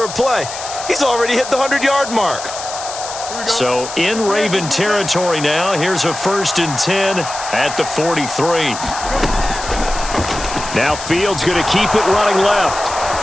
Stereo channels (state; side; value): noise; left; hiss, 10 dB below the sound